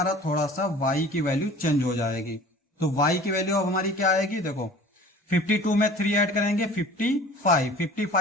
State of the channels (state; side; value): normal; both; correlation 0.45